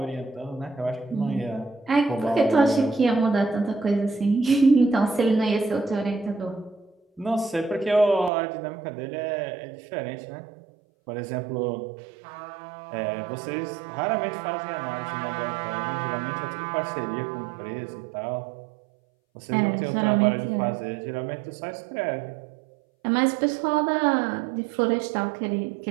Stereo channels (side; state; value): left; drops out; at 8.3 s